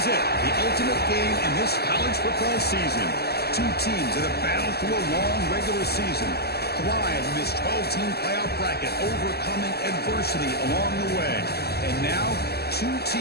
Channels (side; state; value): right; late; 0.46 ms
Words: it, the ultimate game in this college football season. Two teams that have battled through a long regular season, thrive in this 12-team playoff bracket, overcoming adversity along the way. And now, two